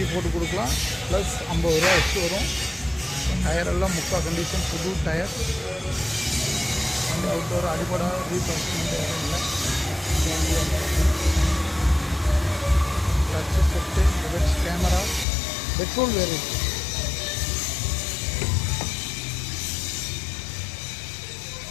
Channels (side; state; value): right; drops out; at 15.2 s